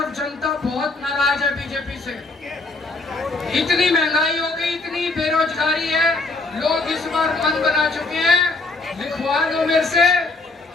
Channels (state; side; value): quieter; right; 3.3 dB